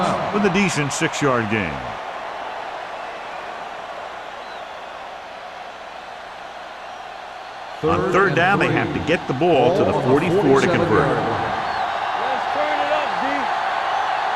with a decent 6-yard gain. On third down, they have to get the ball to the 44 to convert.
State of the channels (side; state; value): both; identical; correlation 1.00